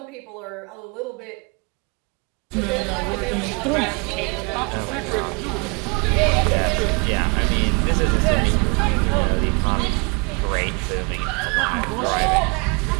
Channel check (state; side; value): quieter; left; 32.0 dB